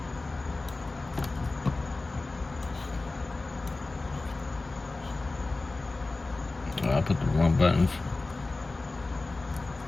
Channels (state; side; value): quieter; right; 3.3 dB